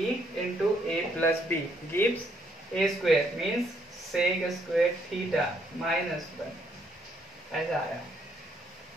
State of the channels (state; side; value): normal; both; correlation 0.71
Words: into A plus B gives A square, means sec square theta minus 1, ऐसा आया।